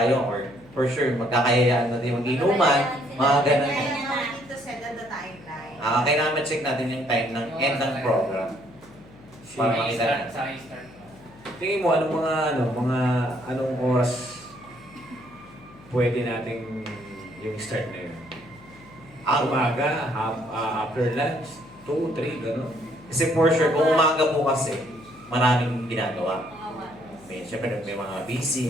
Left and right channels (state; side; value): noise; left; hum, 23 dB below the sound